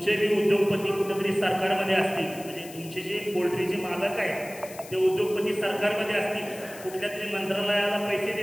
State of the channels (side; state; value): left; noise; hiss, 17 dB below the sound